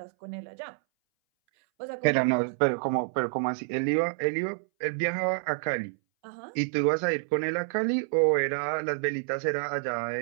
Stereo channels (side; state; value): left; silent; 59 dB below the other